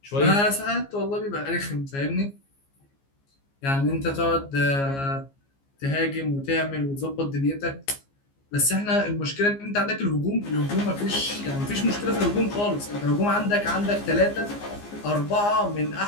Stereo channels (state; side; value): late; right; 15 ms